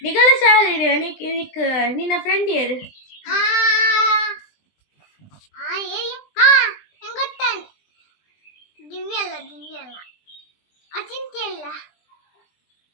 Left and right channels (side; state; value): right; late; 20 ms